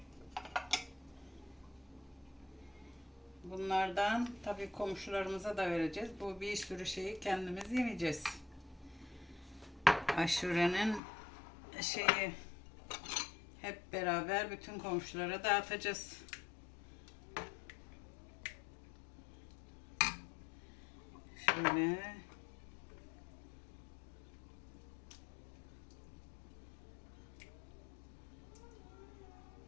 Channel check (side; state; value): right; drops out; at 11.0 s